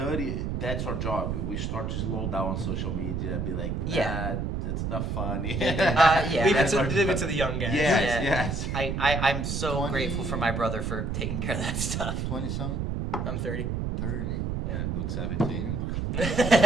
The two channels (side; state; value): right; noise; rumble, 2 dB below the sound